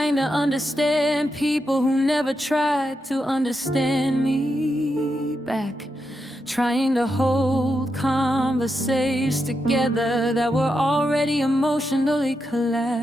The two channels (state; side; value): normal; both; correlation 0.85